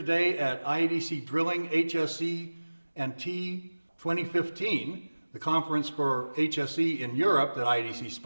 at IADC Drilling HSE and T 2015, the conference for HSE in Europe that IADC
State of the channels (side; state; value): both; inverted; correlation -1.00